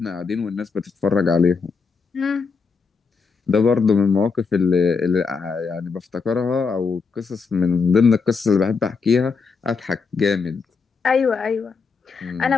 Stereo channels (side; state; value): right; quieter; 5.1 dB